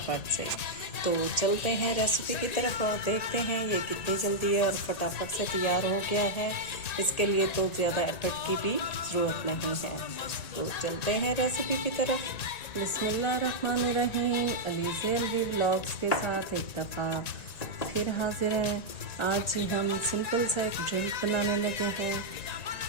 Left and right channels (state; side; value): late; right; 1.8 ms